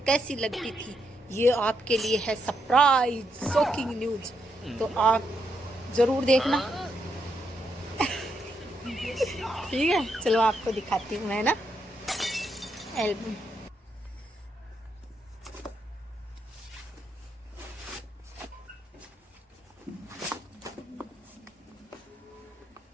कैसी लगती थी। ये आपके लिए है सरप्राइज शॉकिंग न्यूज, तो आप जरूर देखना। ठीक है, चलो आपको दिखाती हूँ मैं ना एल्बम।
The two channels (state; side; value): normal; both; correlation 0.80